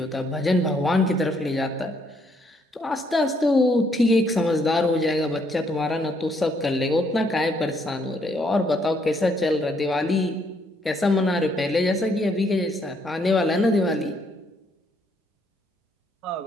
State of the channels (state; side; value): normal; both; correlation 0.70